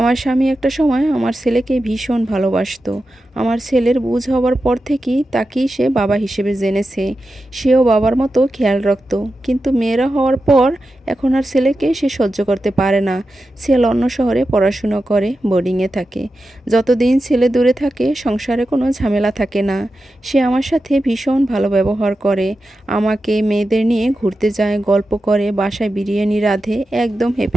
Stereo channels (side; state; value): both; normal; correlation 0.91